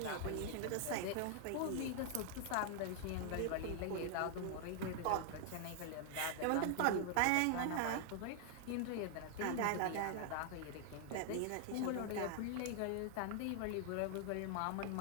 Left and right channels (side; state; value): both; different; correlation 0.00